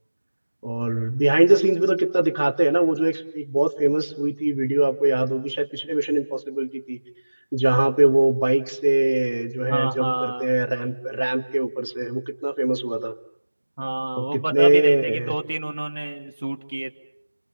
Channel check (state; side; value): inverted; both; correlation -1.00